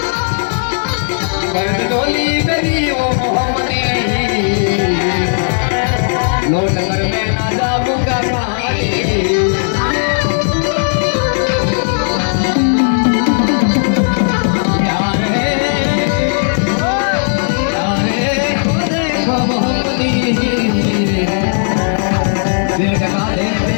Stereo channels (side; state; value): right; silent; digital silence